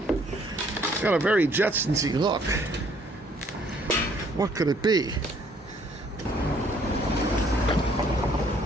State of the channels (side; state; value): both; normal; correlation 0.63